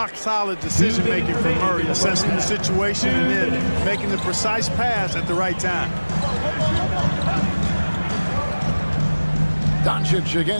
decision-making from Murray, assessing the situation and then making the precise pass at the right time. Doncic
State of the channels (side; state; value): both; inverted; correlation -1.00